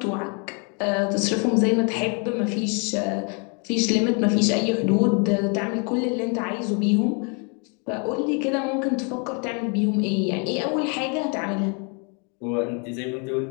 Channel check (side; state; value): right; quieter; 36.1 dB